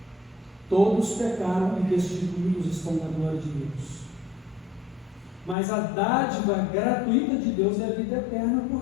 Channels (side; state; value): right; drops out; at 5.6 s